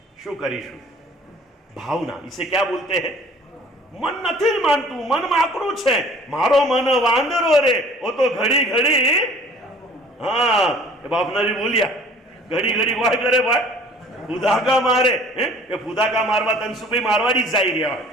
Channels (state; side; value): normal; both; correlation 0.51